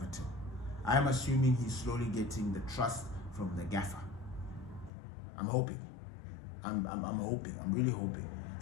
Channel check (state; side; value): drops out; right; at 4.9 s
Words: I am assuming he's slowly getting the trust from the gaffer. I'm hoping. I'm hoping. I'm really hoping.